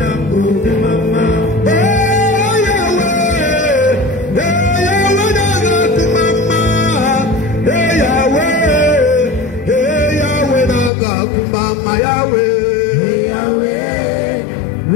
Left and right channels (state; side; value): drops out; right; at 10.9 s